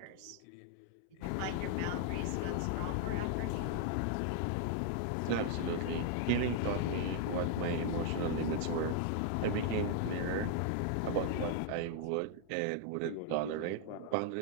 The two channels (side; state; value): both; different; correlation 0.00